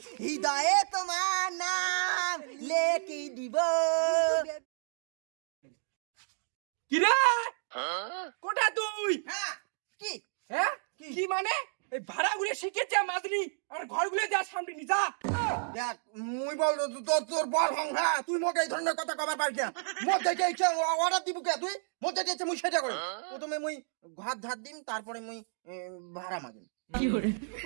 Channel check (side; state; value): left; silent; digital silence